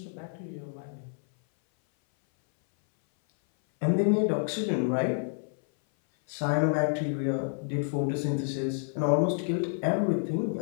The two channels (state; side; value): silent; right; 58 dB below the other